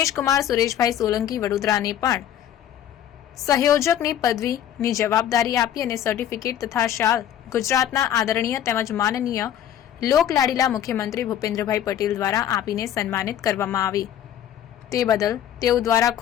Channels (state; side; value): quieter; right; 10.7 dB